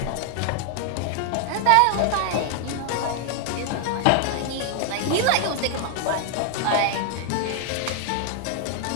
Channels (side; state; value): both; different; correlation 0.00